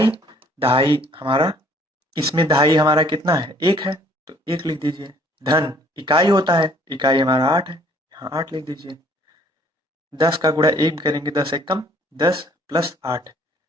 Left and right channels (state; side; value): normal; both; correlation 0.59